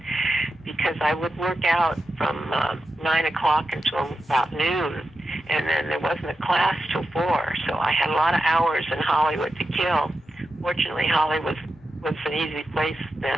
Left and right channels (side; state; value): both; normal; correlation 0.89